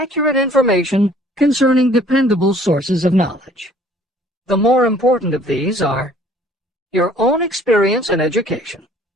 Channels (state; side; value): normal; both; correlation 0.55